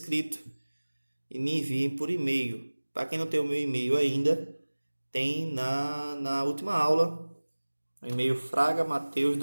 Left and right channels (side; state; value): both; inverted; correlation -1.00